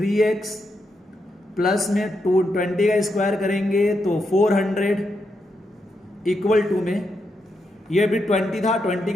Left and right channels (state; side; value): normal; both; correlation 0.83